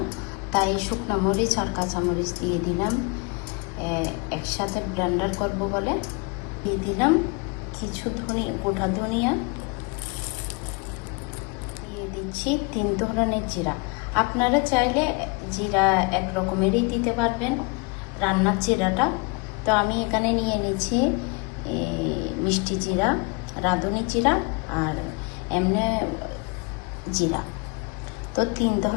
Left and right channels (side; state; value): right; quieter; 30.3 dB